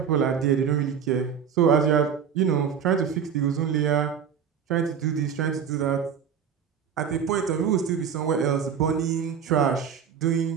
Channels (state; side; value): quieter; left; 7.5 dB